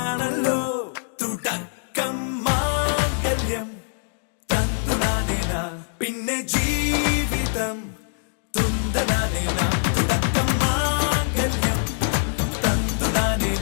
തുടക്കം മാംഗല്യം തന്തുനാനേന, പിന്നെ ജീവിതം തുന്തനാനേന. തുടക്കം മാംഗല്യം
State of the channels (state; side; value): silent; right; digital silence